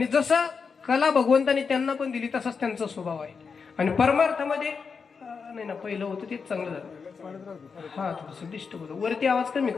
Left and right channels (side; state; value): right; quieter; 5.5 dB